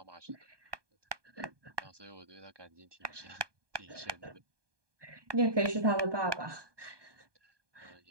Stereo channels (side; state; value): left; late; 1.2 ms